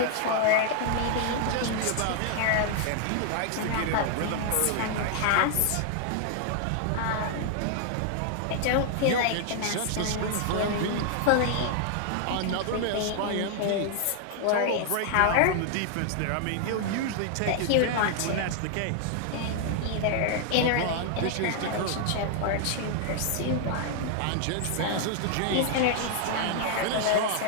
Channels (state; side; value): different; both; correlation 0.00